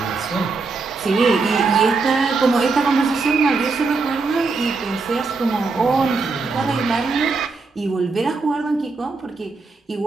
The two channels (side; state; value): left; quieter; 4.1 dB